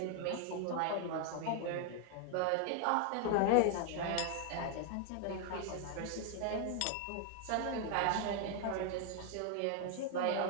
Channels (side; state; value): both; different; correlation 0.00